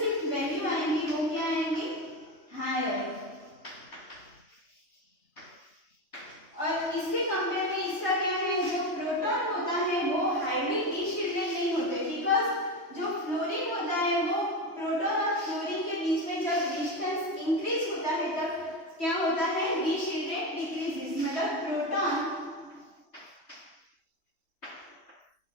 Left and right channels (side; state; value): right; late; 3.3 ms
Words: वैल्यू आएंगी वो